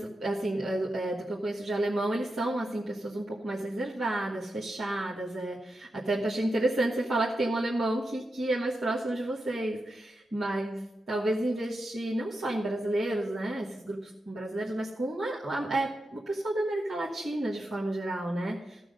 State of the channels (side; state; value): both; normal; correlation 0.88